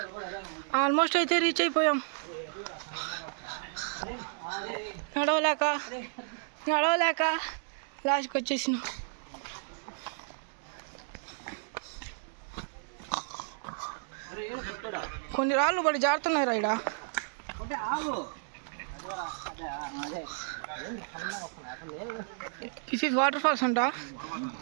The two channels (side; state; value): left; silent; digital silence